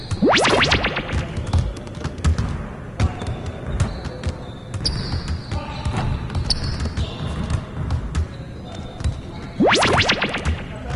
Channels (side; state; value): both; identical; correlation 1.00